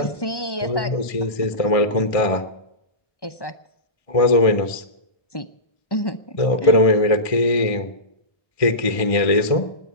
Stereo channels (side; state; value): right; late; 1.6 ms